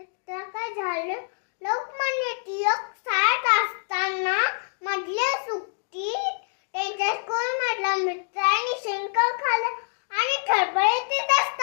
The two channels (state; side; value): silent; right; digital silence